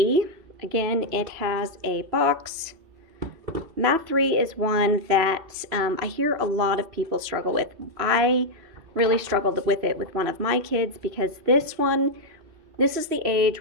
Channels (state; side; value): late; left; 3.0 ms